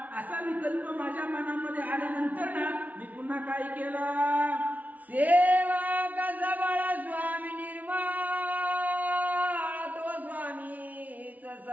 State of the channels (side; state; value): left; late; 0.074 ms